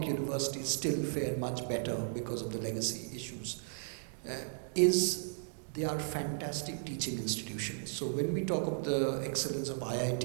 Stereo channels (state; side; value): silent; left; digital silence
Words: universities still fare much better because of the legacy issues, is they are fantastic teaching institutions. So when we talk of the excellence of